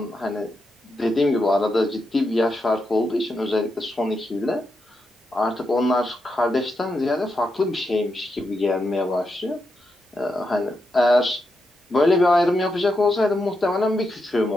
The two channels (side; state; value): both; normal; correlation 0.85